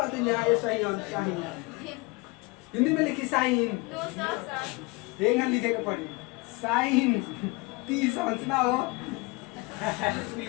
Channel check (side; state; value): right; quieter; 25.4 dB